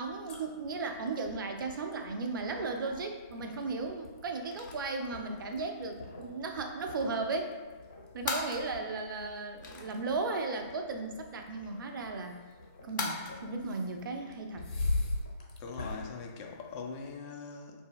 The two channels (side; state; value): both; inverted; correlation -0.43